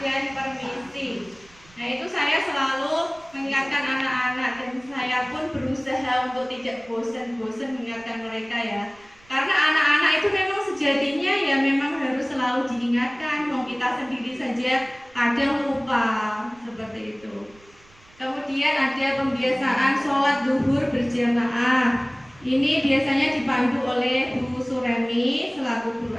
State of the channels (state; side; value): noise; right; rumble, 28 dB below the sound